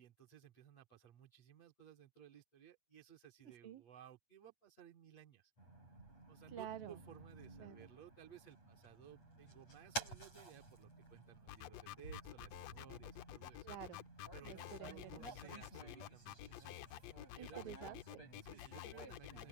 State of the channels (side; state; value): right; late; 8.4 ms